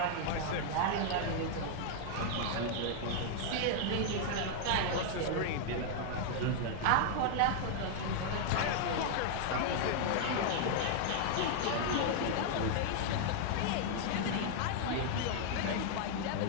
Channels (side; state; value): both; different; correlation 0.00